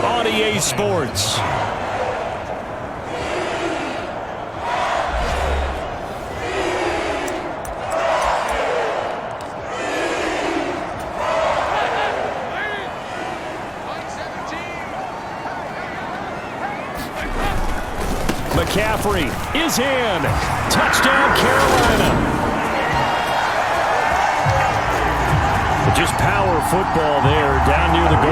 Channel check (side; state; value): both; identical; correlation 1.00